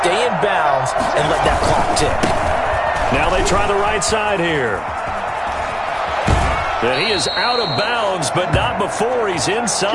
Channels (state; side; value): identical; both; correlation 1.00